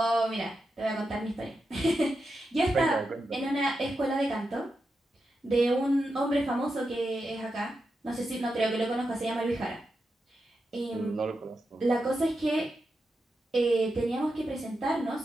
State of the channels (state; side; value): normal; both; correlation 0.88